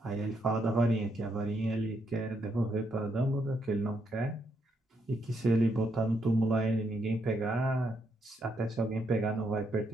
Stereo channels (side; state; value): both; normal; correlation 0.77